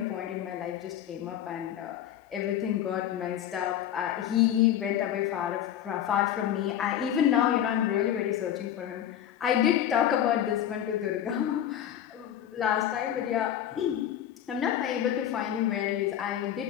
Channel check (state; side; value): quieter; right; 10.6 dB